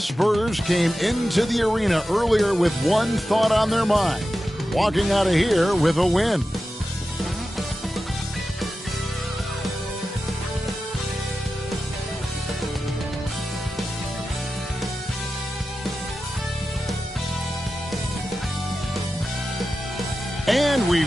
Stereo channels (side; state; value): both; normal; correlation 0.92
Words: came into the arena earlier with one thought on their mind, walking out of here with a win. And we